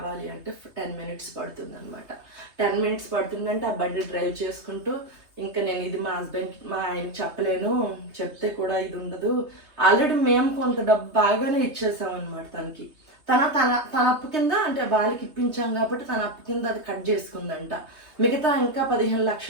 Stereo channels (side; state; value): left; late; 3.2 ms